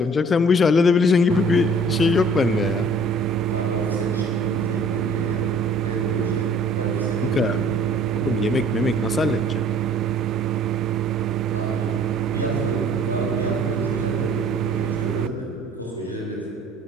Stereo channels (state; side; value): normal; both; correlation 0.53